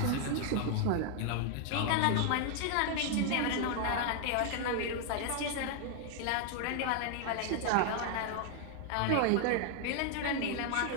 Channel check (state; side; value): different; both; correlation 0.00